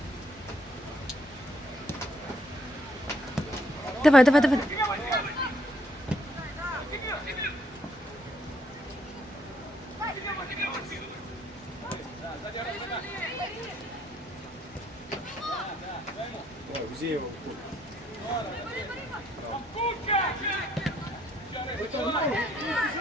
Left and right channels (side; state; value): both; normal; correlation 0.69